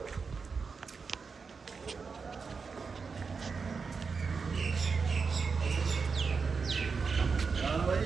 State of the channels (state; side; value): quieter; left; 5.1 dB